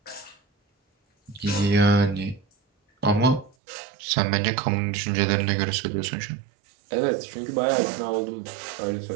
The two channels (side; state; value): left; drops out; at 3.6 s